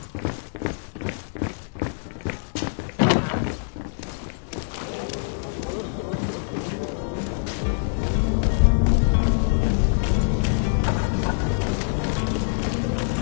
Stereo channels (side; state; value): right; silent; digital silence